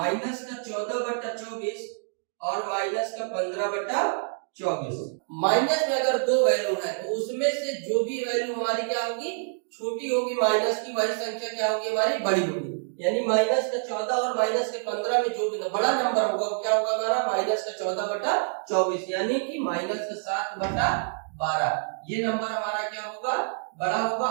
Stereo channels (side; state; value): left; silent; digital silence